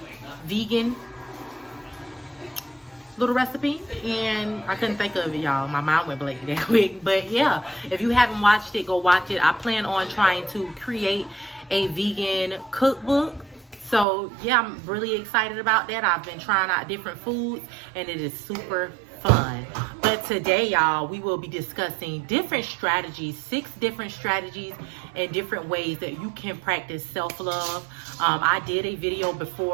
vegan little recipe, and I couldn't think of it, y'all. My mind went blank that quick. But yeah, if you haven't watched it, go watch it. I plan on trying to create a vegan cookbook. So yeah, I'm really excited about that. I've been trying out different foods and it is super fun. But today, y'all, we will be discussing different strategies, 6 different strategies and different ways that you can practice self-love. I did a video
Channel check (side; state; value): left; drops out; at 14.1 s